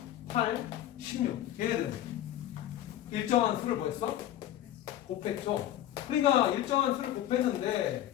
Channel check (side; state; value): right; quieter; 12.6 dB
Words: 8, 16 얘네들은 일정한 수를 뭐 했어? 곱했죠. 그러니까 일정한 수를